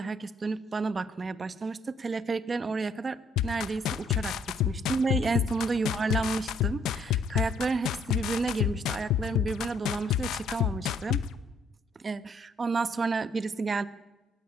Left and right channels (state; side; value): normal; both; correlation 0.66